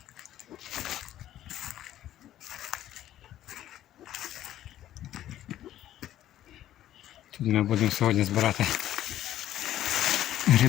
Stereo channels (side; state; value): right; quieter; 12.7 dB